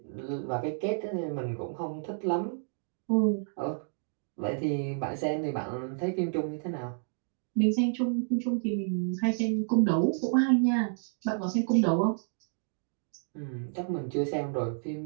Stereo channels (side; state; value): left; silent; digital silence